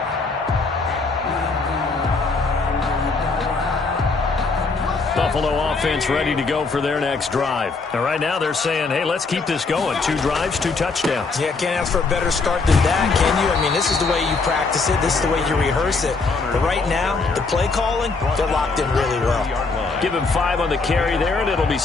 Buffalo offense ready to go for their next drive. And right now they're saying, hey, let's keep this going. 2 drives, 2 touchdowns. Yeah, can't ask for a better start than that, can you? I mean, this is the way you practice it. This is the way you rehearse it. But right now, the play calling, they're locked in really well. Give him 5 on the carry there, and it'll be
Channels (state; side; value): quieter; right; 4.1 dB